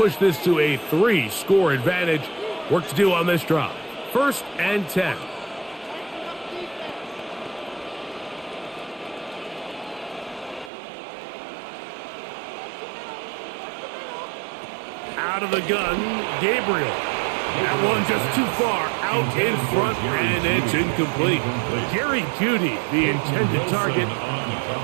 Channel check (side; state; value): left; drops out; at 10.7 s